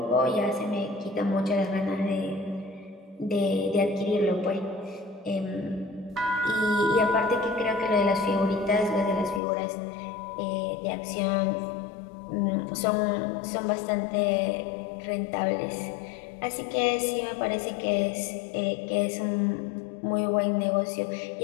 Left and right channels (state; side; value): drops out; right; at 9.4 s